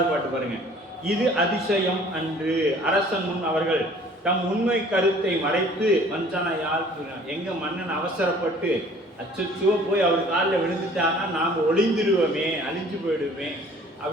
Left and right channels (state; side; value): normal; both; correlation 0.52